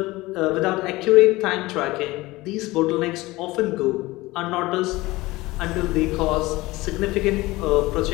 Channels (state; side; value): quieter; right; 20.1 dB